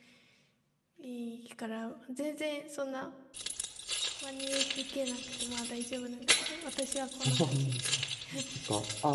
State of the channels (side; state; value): both; identical; correlation 1.00